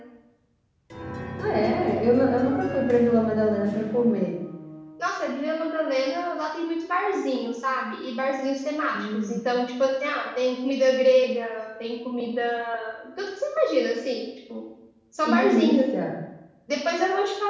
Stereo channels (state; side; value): identical; both; correlation 1.00